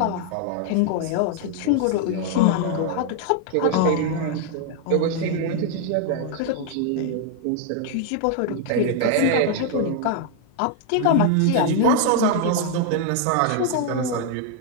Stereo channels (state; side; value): different; both; correlation 0.00